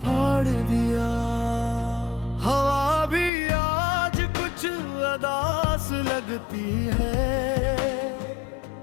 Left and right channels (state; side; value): drops out; right; at 3.3 s